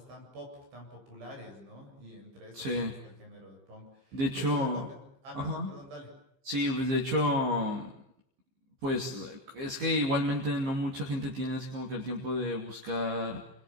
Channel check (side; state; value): left; late; 15 ms